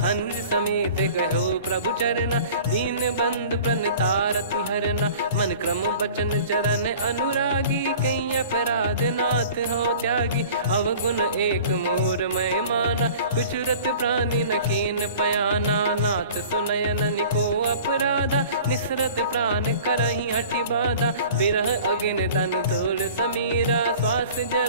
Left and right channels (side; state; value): both; inverted; correlation -0.45